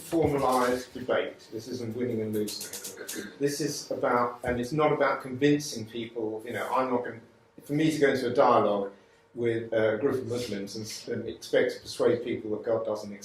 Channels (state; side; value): identical; both; correlation 1.00